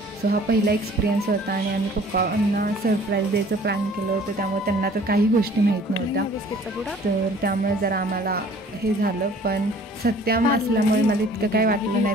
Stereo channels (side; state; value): both; normal; correlation 0.52